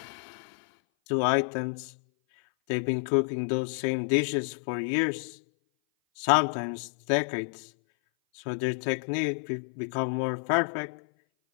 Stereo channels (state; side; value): silent; right; 57 dB below the other